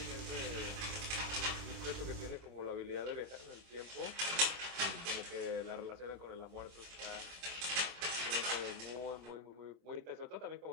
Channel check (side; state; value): left; late; 26 ms